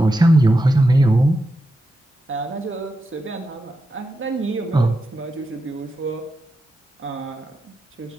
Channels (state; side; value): normal; both; correlation 0.88